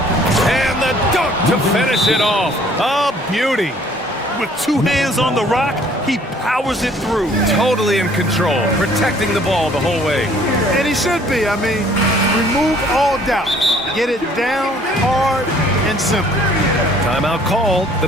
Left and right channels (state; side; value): normal; both; correlation 0.57